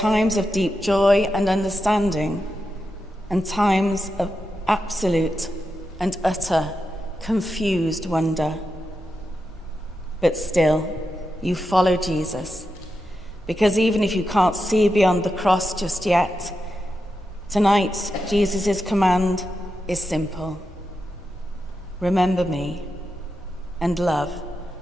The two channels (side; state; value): both; normal; correlation 0.88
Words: of deep joy and understanding, and times of absolute and utter confused wonder. But still, you follow Jesus, because even if you can't see beyond the cross just yet, tonight Jesus' command is simple. Remember me and love